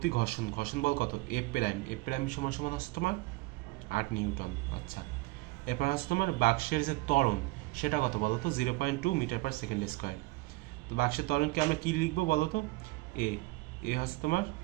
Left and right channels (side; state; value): left; quieter; 22.2 dB